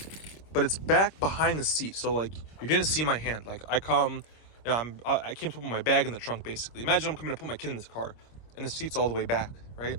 but it's back behind the seat. So, like, you're going to see my hand. Like, I came to put my bag in the trunk, basically. Imagine I'm coming to put my kid in this car, and the seat's all the way back, right?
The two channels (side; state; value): right; late; 26 ms